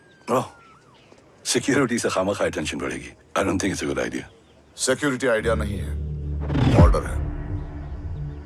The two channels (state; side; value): identical; both; correlation 1.00